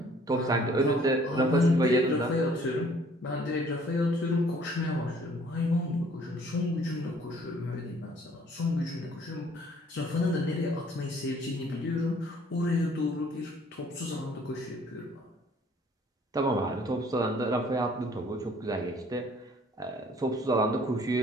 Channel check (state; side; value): normal; both; correlation 0.58